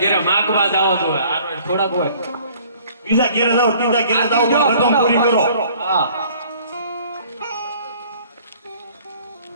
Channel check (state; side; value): inverted; both; correlation -0.54